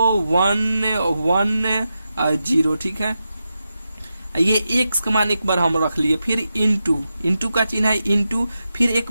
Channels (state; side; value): inverted; both; correlation -0.89